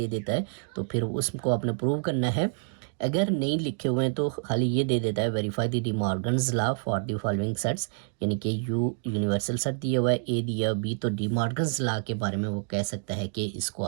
देता है तो फिर उसको आपने प्रूव करना है। अगर नहीं लिखे हुए हैं तो खाली ये दे देता है verify the De Morgan's law for the following sets, यानी कि यू यूनिवर्सल सेट दिया हुआ है, ए दिया बी, तो डिमॉर्गन्स लॉ के बारे में वो कह सकता है कि इसको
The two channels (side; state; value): left; silent; digital silence